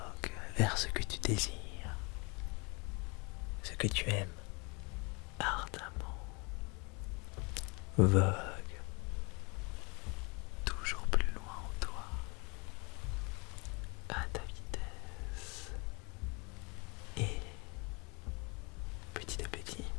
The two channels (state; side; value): quieter; right; 30.1 dB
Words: vers ce que tu désires, ce que tu aimes ardemment. Vogue toujours plus loin en toi, à ta vitesse. Et petit à petit,